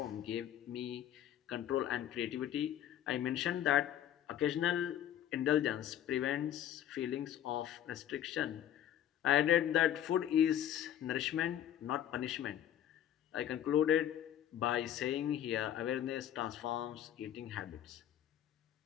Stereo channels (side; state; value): right; quieter; 10.9 dB